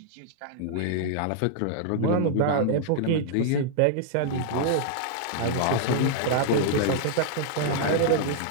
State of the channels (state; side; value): different; both; correlation -0.01